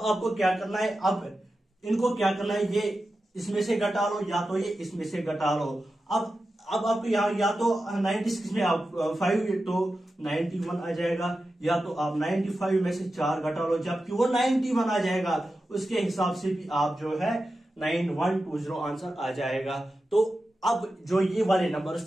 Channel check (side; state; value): both; normal; correlation 0.92